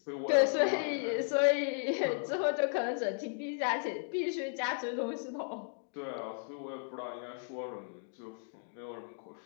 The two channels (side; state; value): right; silent; digital silence